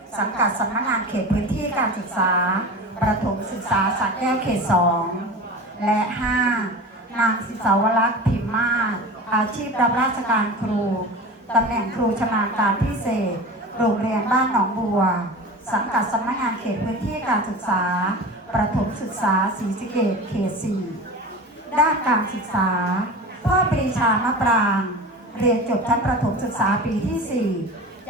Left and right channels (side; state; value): both; normal; correlation 0.32